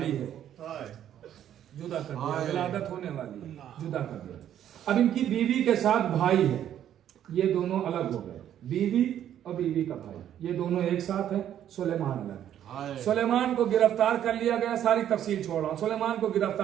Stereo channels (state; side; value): quieter; left; 10.6 dB